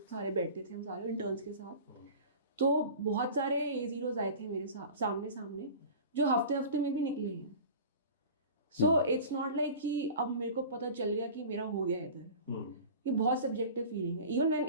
सारे बैठते थे हम सारे इंटर्न्स के साथ. तो बहुत सारे A0 आए थे मेरे सामने जो हफ्ते में भी निकले हैं. सो इट्स नॉट लाइक कि अब मेरे को पता चल गया कि मेरा हो गया इधर. ये बहुत सब्जेक्टिव फीलिंग है. Even when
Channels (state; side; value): inverted; both; correlation -0.38